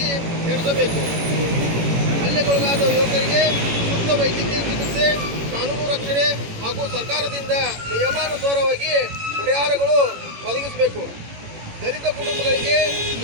ನಡೆಸಬೇಕು. ಹಲ್ಲೆಗೊಳಗಾದ ಯುವಕರಿಗೆ ಸೂಕ್ತ ವೈದ್ಯಕೀಯ ಚಿಕಿತ್ಸೆ, ಕಾನೂನು ರಕ್ಷಣೆ ಹಾಗೂ ಸರ್ಕಾರದಿಂದ ನಿಯಮಾನುಸಾರವಾಗಿ ಪರಿಹಾರಗಳು ಒದಗಿಸಬೇಕು. ದಲಿತ ಕುಟುಂಬಗಳಿಗೆ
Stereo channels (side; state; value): left; late; 18 ms